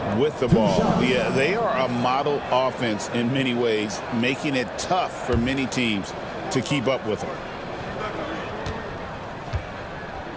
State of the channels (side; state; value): both; identical; correlation 1.00